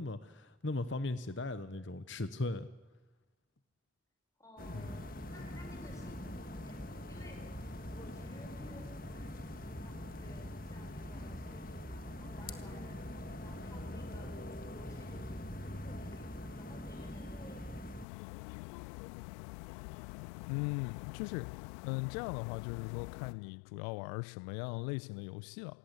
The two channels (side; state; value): right; drops out; at 18.1 s